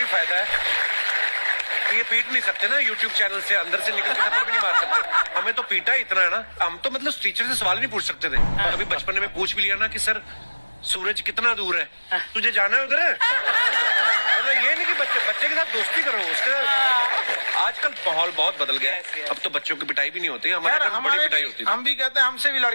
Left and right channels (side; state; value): both; inverted; correlation -1.00